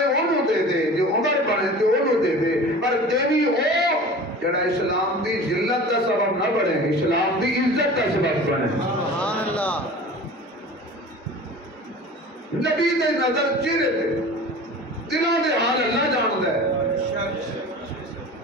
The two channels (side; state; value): both; normal; correlation 0.38